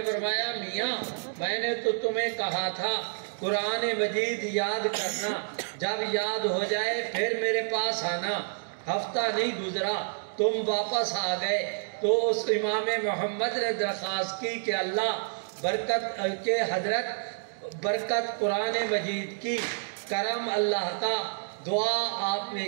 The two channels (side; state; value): left; silent; digital silence